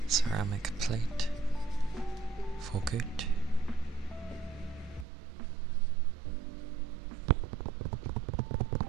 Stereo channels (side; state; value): left; drops out; at 5.1 s